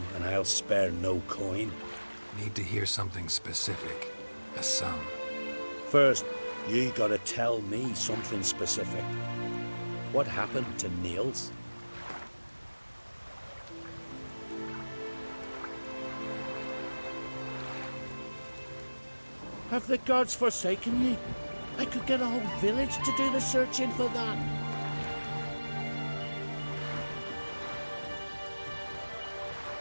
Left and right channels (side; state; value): both; inverted; correlation -1.00